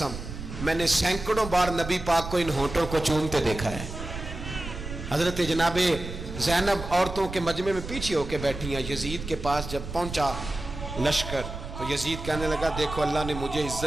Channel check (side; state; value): right; noise; rumble, 9 dB below the sound